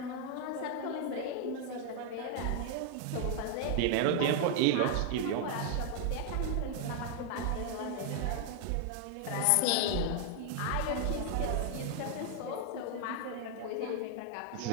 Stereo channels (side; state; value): both; different; correlation 0.00